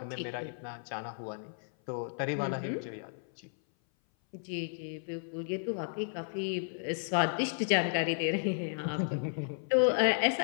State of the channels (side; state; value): right; silent; 55 dB below the other